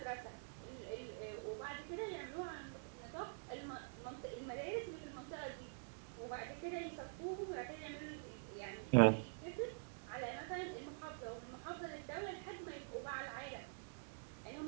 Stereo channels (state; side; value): silent; left; digital silence